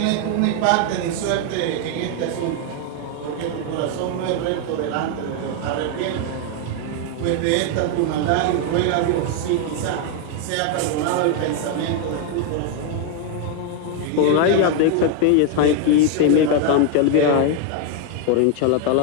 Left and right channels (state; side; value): different; both; correlation 0.01